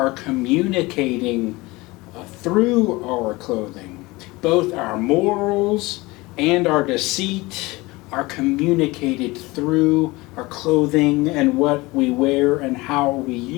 communicating through our clothing. Both our morals and our deceit are communicated through our clothing and what we wear and how we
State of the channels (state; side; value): quieter; right; 22.1 dB